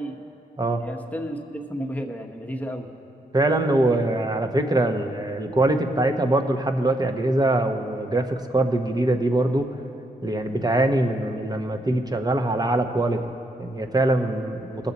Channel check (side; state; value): both; normal; correlation 0.76